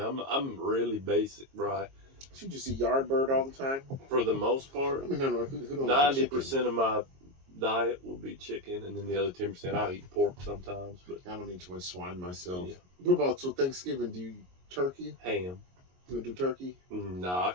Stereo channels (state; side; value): late; left; 22 ms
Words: I'm really basic, right? You just eat Yardbird all the time? For the most part. I mean, no, who don't 90% of my diet will be chicken, and then the other 10% I'll eat pork sometimes. But I don't eat too much swine myself. Yeah. What about Thanksgiving? Do you turkey? Ham. You do turkey? Nah, I